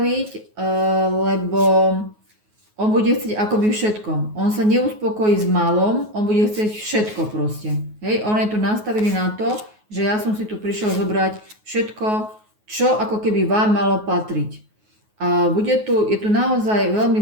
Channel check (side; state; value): left; late; 9.4 ms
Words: lebo on bude chcieť akoby všetko. On sa neuspokojí s malom, on bude chcieť všetko proste. Hej, on je tu nastavený na to, že ja som si tu prišiel zobrať všetko, čo ako keby vám malo patriť. A je tu naozaj veľmi